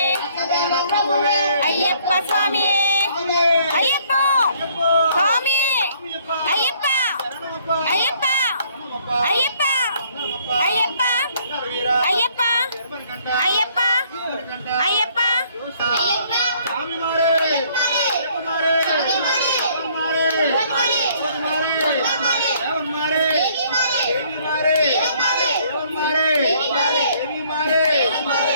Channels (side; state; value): both; inverted; correlation -0.62